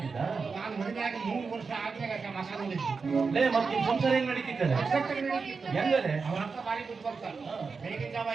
ನಾನು ಮದುವೆ ಆಗಿ 3 ವರ್ಷ ಆದ್ಮೇಲೆ ಮಸಾಲ ಲೇ, ಮತ್ತೆ ನಿಮ್ ಸಂಸಾರ ಹೆಂಗ್ ನಡೀತಿದ್ದಾರೆ? ಹೆಂಗಲೆ? ಅವ್ರ ಅಪ್ಪ ಬಾರಿ ಬಿಟ್ಟು ಬರ್ತಾರೆ. ಬೆಳಗಿನ ಜಾವ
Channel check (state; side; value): quieter; left; 4.9 dB